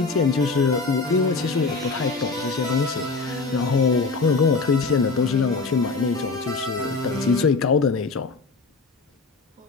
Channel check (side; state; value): right; quieter; 4.0 dB